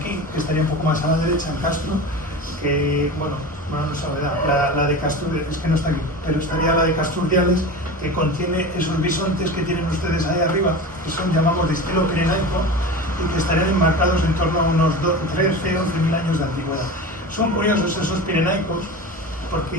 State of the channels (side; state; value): both; normal; correlation 0.30